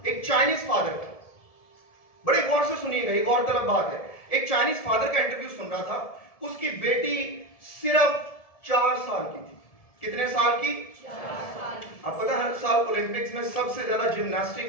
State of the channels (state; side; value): late; right; 1.7 ms